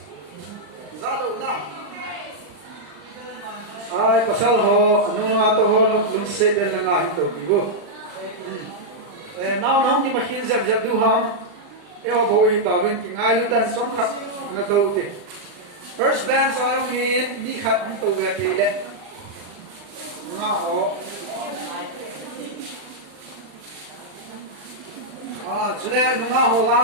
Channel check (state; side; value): late; left; 39 ms